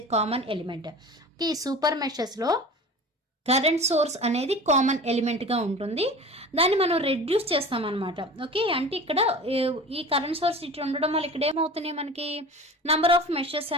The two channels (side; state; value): both; normal; correlation 0.37